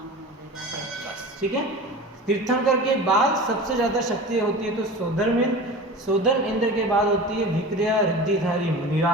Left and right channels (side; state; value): both; normal; correlation 0.34